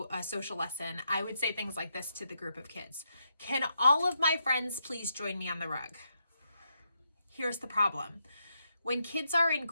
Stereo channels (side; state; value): both; inverted; correlation -0.81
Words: a social lesson, I would say things like this to the group of kids. Can all of my friends please join me on the rug? Here's the problem. When kids are in